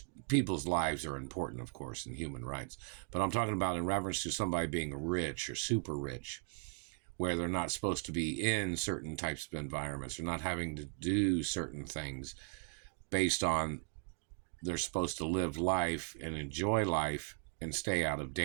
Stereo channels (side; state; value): left; quieter; 39.8 dB